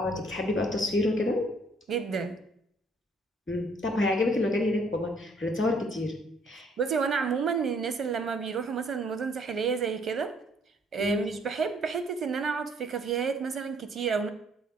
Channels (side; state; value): both; normal; correlation 0.63